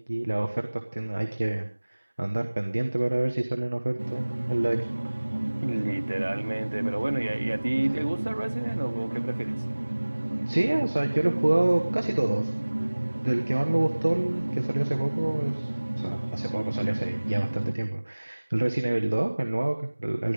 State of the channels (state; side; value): inverted; both; correlation -1.00